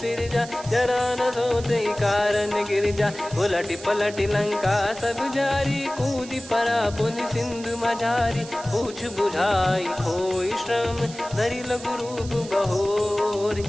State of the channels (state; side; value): noise; right; hiss, 16 dB below the sound